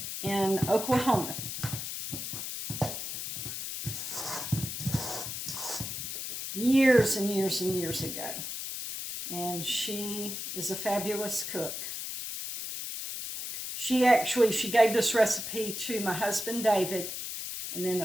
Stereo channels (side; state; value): left; noise; hiss, 5 dB below the sound